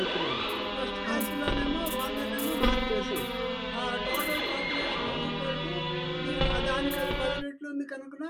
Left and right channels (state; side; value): identical; both; correlation 1.00